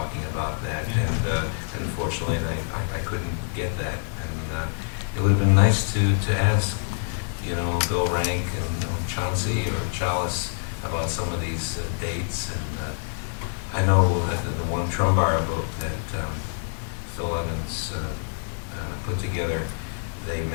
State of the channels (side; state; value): right; silent; digital silence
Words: about that, and unfortunately I couldn't get that, and it would have been nice to ask Bill Rank and Chauncey or Chalice about some of these dates, and I know that the one Trumbara book that Phil Evans put together, they